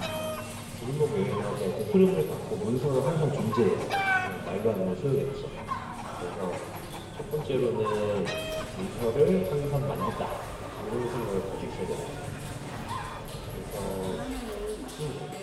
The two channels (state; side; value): identical; both; correlation 1.00